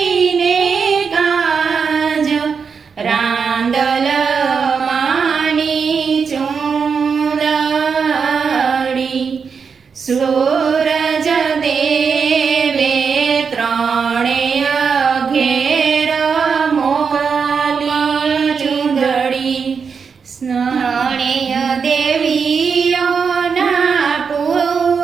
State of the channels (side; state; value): left; quieter; 5.9 dB